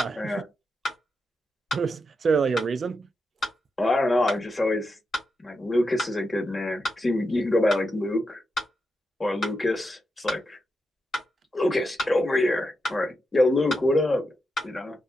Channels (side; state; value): both; normal; correlation 0.86